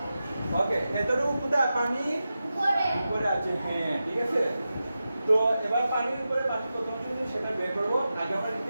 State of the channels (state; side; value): inverted; both; correlation -0.92